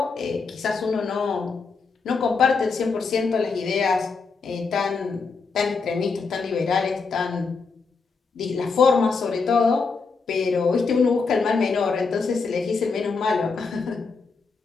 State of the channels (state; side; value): quieter; right; 4.7 dB